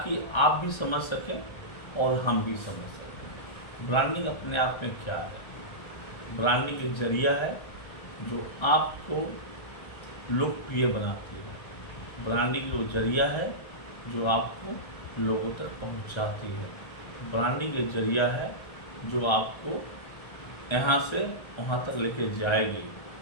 आप भी समझ सकें और हम भी समझ सकें। ब्रांडिंग अपने आप में क्या है? ब्रांडिंग एक जरिया है जो आपको लोकप्रिय बनाती है। ब्रांडिंग वो जरिया है जो आपको लोगों तक पहुंचाती है। ब्रांडिंग एक जरिया है जो आपको यहाँ से वहाँ तक लेके जाएगी।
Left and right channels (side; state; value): right; late; 1.3 ms